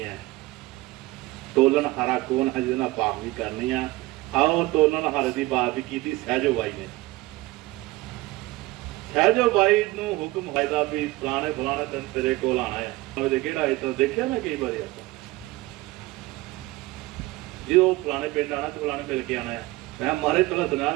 ਹੈ। ਤੋਲਣ ਹਾਰਾ ਕੌਣ ਹੈ, ਜਿਹਦੇ ਨਾਲ ਪਾਪ ਵੀ ਕਰਨੀ ਆ। ਆਓ ਤੋਲਣ ਹਾਰੇ ਦੀ ਬਾਤ ਵੀ ਕੀਤੀ ਸਹਿਜੋ ਬਾਈ ਨੇ। ਸਹਿਜੋ ਬਾਈ ਨੂੰ ਹੁਕਮ ਹੋਇਆ ਵੀ ਫਲਾਣੇ ਦਿਨ ਤੇਰੇ ਕੋਲ ਆਣਾ ਹੈ। ਕਿਹੜਾ ਇਦਾਂ ਦੇਖਿਆ ਮੈਂ ਕਈ ਵਾਰੀ ਆਪਾਂ, ਜੇ ਉਹ ਫਲਾਣੇ ਪਿੰਡ ਆਣਾ ਤੇ ਫਲਾਣੇ ਮਿਲ ਕੇ ਆਣਾ ਹੈ। ਮੈਂ ਮਾਰੇ ਪਹਿਲਾਂ ਦਿਨਾਂ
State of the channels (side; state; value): left; quieter; 19.7 dB